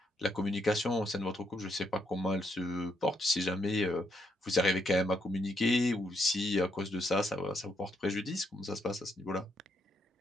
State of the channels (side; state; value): both; normal; correlation 0.76